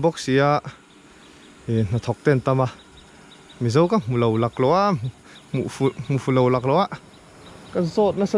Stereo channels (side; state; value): both; identical; correlation 1.00